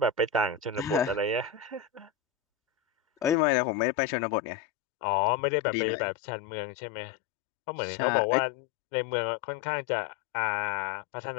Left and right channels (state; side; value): drops out; right; at 3.4 s